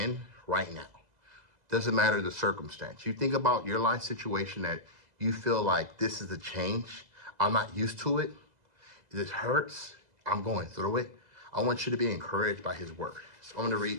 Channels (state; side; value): late; left; 2.0 ms